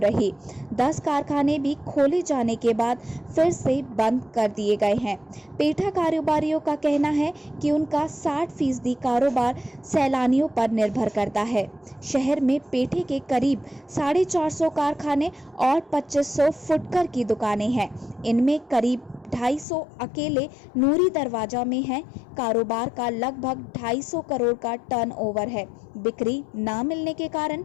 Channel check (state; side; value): drops out; right; at 19.7 s